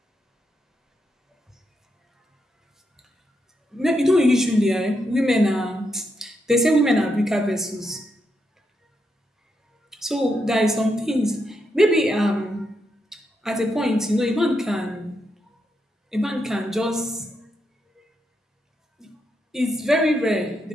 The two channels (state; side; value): normal; both; correlation 0.82